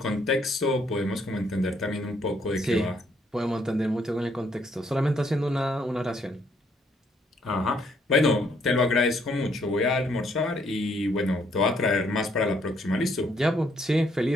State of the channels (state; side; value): normal; both; correlation 0.69